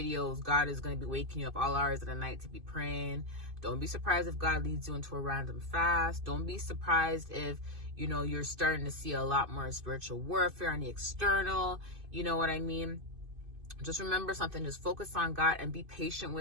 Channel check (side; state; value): left; late; 2.5 ms